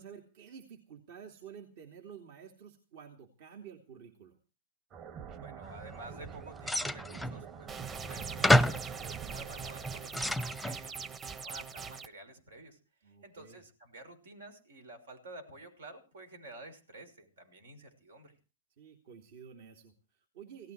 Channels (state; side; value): normal; both; correlation 0.84